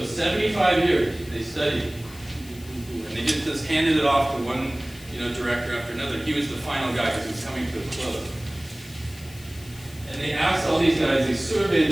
75 years they studied, and they just handed it off to one director after another. He was the final guy because he was coming to a close. And they asked all these guys, they surveyed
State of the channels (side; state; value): left; noise; hiss, 20 dB below the sound